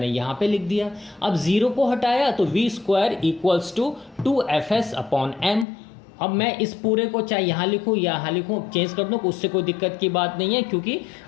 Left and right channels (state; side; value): drops out; right; at 5.7 s